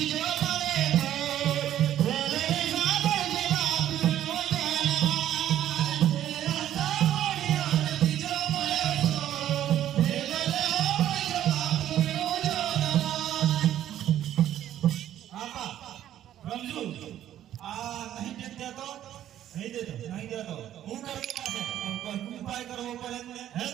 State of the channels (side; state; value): left; quieter; 11.7 dB